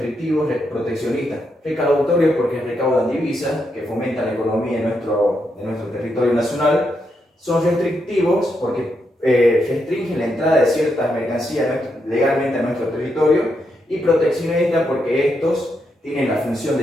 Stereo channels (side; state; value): both; normal; correlation 0.81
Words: proteccionistas. Recaudatorios porque recaudan divisas que fomentan la economía de nuestro territorio nacional. Son restrictivos porque restringen la entrada de ciertas mercancías legalmente a nuestro territorio. Y proteccionistas porque estos tienen la función